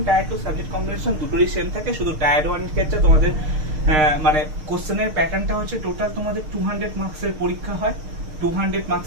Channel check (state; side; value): late; left; 6.5 ms